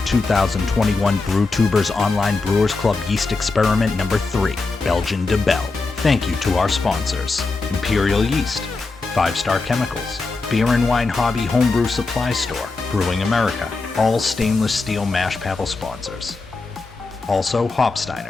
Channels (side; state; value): right; quieter; 3.8 dB